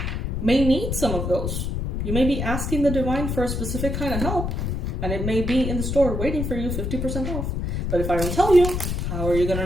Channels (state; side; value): noise; left; rumble, 2 dB below the sound